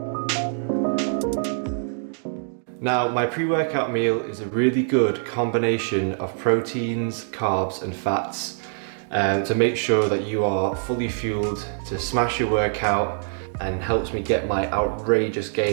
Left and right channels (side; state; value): left; silent; digital silence